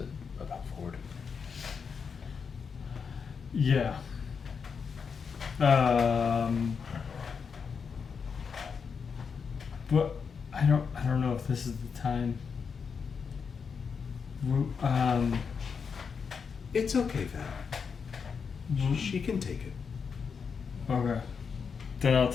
about Ford. Yeah. What? I don't know if this is the time. It's okay, Val. She can take it. Okay. Then I'll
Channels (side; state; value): right; quieter; 6.0 dB